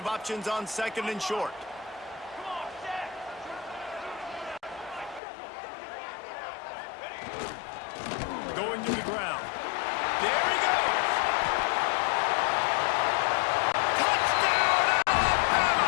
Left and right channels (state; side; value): drops out; right; at 5.2 s